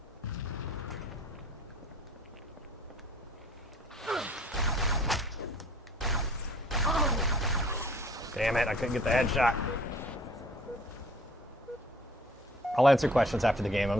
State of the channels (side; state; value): both; normal; correlation 0.53